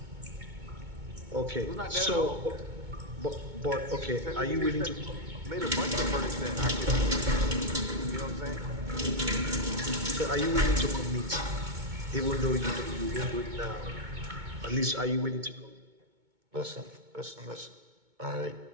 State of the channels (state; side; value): late; left; 2.2 ms